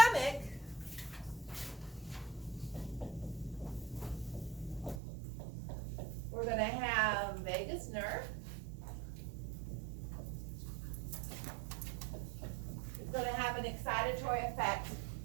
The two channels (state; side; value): drops out; left; at 5.0 s